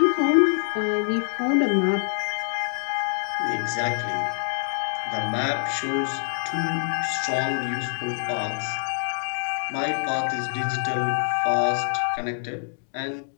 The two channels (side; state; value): right; silent; digital silence